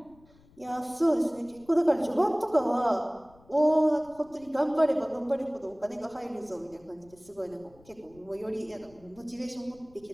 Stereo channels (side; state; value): left; noise; rumble, 27 dB below the sound